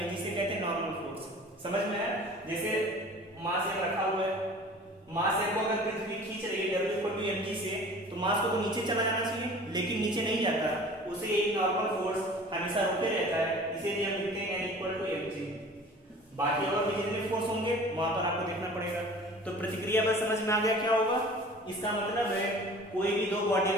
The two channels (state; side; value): normal; both; correlation 0.44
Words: जिसे कहते हैं नॉर्मल फोर्स। समझ में आया। जैसे मास m रखा हुआ है, मास m को अगर पृथ्वी खींच रही है W=mg से, तो मास को तो नीचे चला जाना चाहिए, लेकिन नीचे नहीं जाता, उसे एक नॉर्मल फोर्स हमेशा रोके रहता है, इसीलिए हम लिखते हैं N=mg। बाकी और भी जितने फोर्स होंगे वहां पर आपको देखना पड़ेगा। तो प्रतिक्रिया बल समझ में आ गया क्या होगा। इसका मतलब है कोई भी दो बॉडी